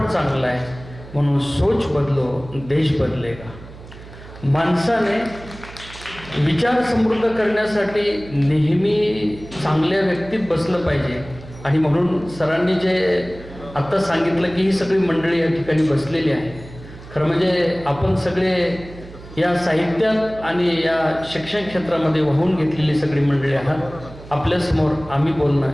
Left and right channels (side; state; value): right; noise; hum, 17 dB below the sound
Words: चांगला आहे, म्हणून सोच बदलो देश बदलेगा. माणसाने विचार समृद्ध करण्यासाठी नेहमी चांगल्या व्यक्तीत बसलं पाहिजे. आणि म्हणून सरांनी जे आत्ता सांगितलं की ही सगळी मंडळी या ठिकाणी बसलेली आहे. खरं म्हणजे आपण सगळे या साहित्यात आणि या शिक्षण क्षेत्रामध्ये वाहून घेतलेली सगळी मंडळी आहात. आपल्यासमोर आम्ही